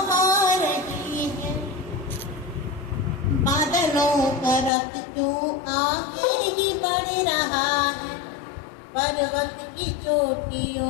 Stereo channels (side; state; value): right; drops out; at 4.7 s